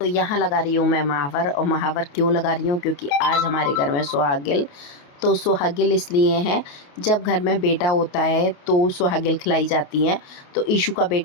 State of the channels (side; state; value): right; late; 28 ms